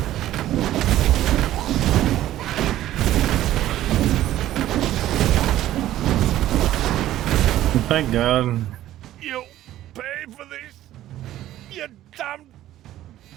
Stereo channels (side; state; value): left; quieter; 13.6 dB